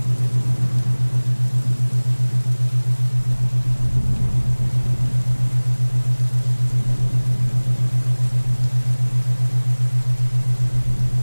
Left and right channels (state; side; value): inverted; both; correlation -1.00